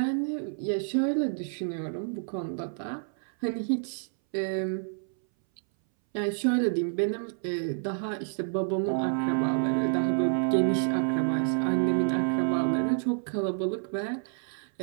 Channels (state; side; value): silent; left; 59 dB below the other